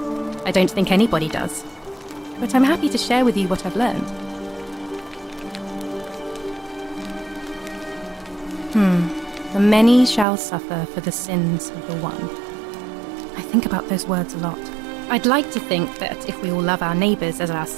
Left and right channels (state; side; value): drops out; left; at 10.2 s